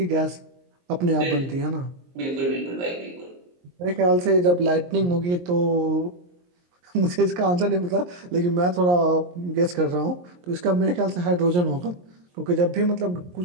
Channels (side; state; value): left; late; 23 ms